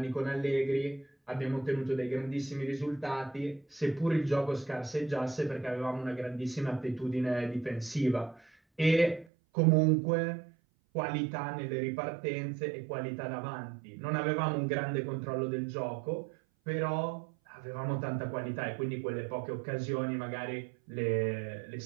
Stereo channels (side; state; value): left; drops out; at 9.2 s